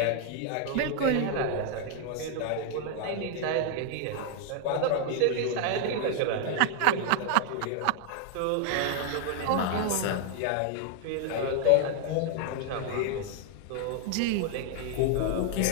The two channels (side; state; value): both; different; correlation 0.00